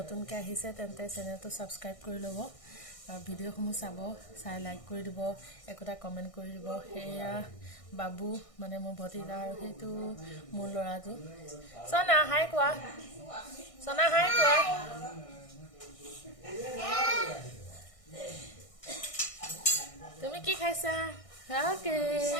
আহিছে তেন্তে চেনেলটো ছাবস্ক্ৰাইব কৰি ল'ব আৰু ভিডিঅ'সমূহ চাই লাইক কৰি দিব, একোটা কমেণ্ট কৰি দিব। সেয়া বাবু মানে মোৰ ভতিজা আৰু সেইটো মোৰ ল'ৰাটো। চনা হাই কোৱা, চনা হাই কোৱা। তুমি কি খাইছা? অ'কে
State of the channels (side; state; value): right; late; 1.6 ms